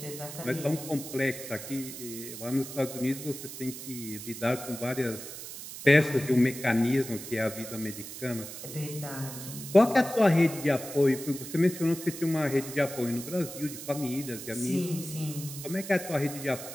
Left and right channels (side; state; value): right; noise; hiss, 10 dB below the sound